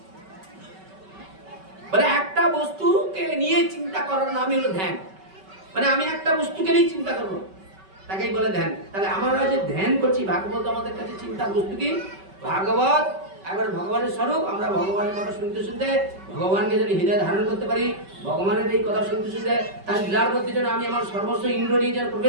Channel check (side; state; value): left; late; 5.2 ms